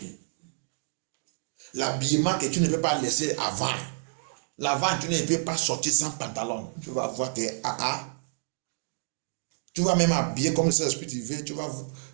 L'habillement que tu ne peux pas laisser avant. L'avant, tu ne peux pas sortir sans pantalon. Tu vas voir que Tu vas même habiller comme le Saint-Esprit te veut.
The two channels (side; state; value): left; silent; digital silence